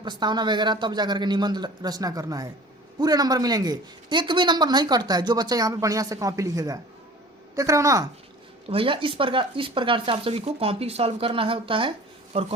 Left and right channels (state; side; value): normal; both; correlation 0.43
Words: वगैरह तब जाकर के निबंध रचना करना है, पूरे नंबर मिलेंगे, एक भी नंबर नहीं कटता है जो बच्चा यहाँ पे बढ़िया से कॉपी लिखेगा, देख रहे हो ना। तो भैया इस प्रकार से आप सभी को कॉपी सॉल्व करना है होता है और